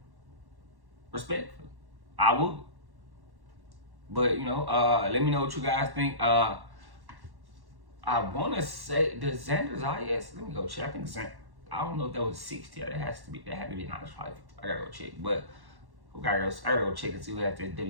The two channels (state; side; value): late; left; 1.1 ms